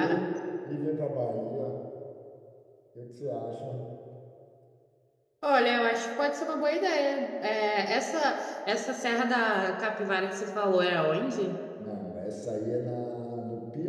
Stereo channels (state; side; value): identical; both; correlation 1.00